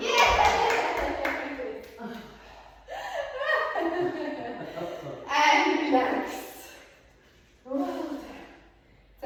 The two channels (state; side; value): identical; both; correlation 1.00